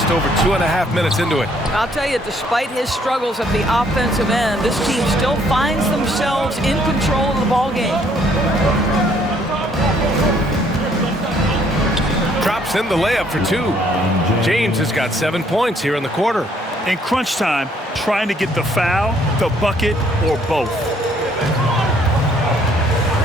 over 2.5 minutes into it. I'll tell you, despite his struggles at the offensive end, this team still finds themselves in control of the ball game. Drops in the layup for 2. James has got 7 points here in the quarter. In crunch time, trying to get the foul, the bucket, or both.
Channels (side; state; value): both; normal; correlation 0.65